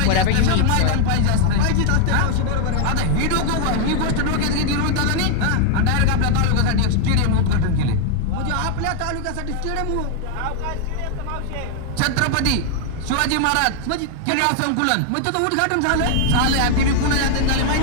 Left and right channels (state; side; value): different; both; correlation 0.00